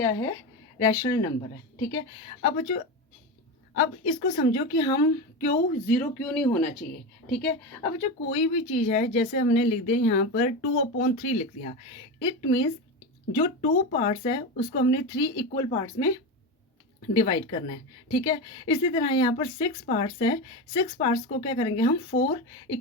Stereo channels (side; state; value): both; normal; correlation 0.19